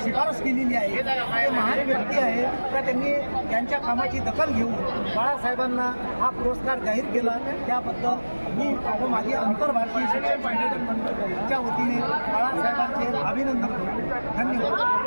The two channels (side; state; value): both; inverted; correlation -1.00